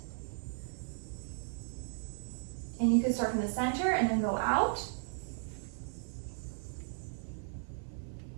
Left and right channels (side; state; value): left; silent; 54 dB below the other